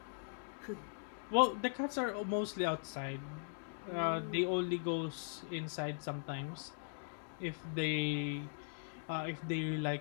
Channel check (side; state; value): right; silent; digital silence